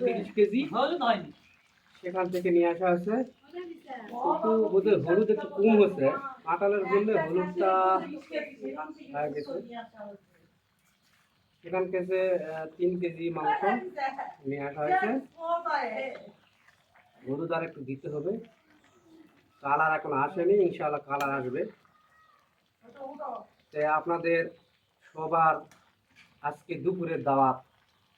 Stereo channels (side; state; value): both; identical; correlation 1.00